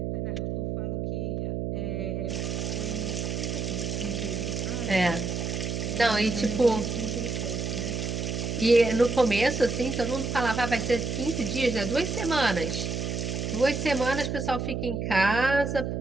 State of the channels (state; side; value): noise; right; hum, 2 dB below the sound